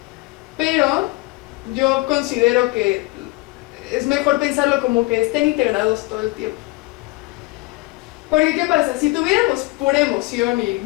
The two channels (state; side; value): quieter; right; 21.9 dB